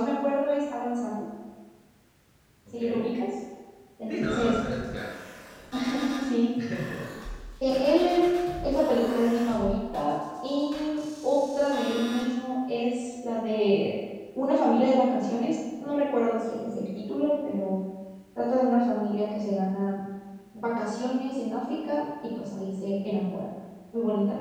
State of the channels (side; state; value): both; identical; correlation 1.00